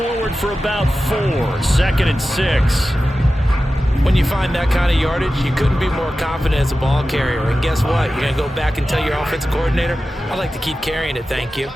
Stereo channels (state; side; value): normal; both; correlation 0.94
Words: for about 4. 2nd and 6. When you find that kind of yardage, you couldn't be more confident as a ball carrier. And guess what? You're going to go back and tell your offensive coordinator, I'd like to keep carrying it, thank you.